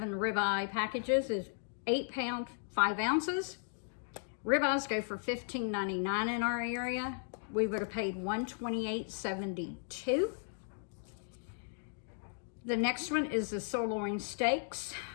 ribeye packages is 8 pounds, 5 ounces. Ribeyes go for $15.99 in our area. We would have paid $128.72. The next one is the sirloin steaks.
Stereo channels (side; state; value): right; silent; digital silence